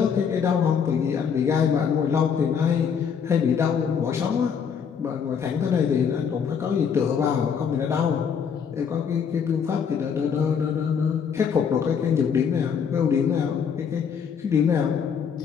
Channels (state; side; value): quieter; right; 7.0 dB